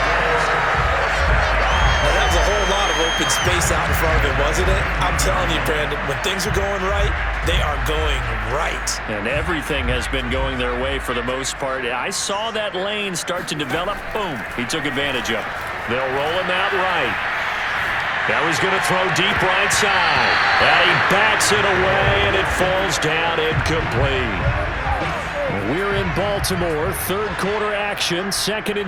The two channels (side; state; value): both; identical; correlation 1.00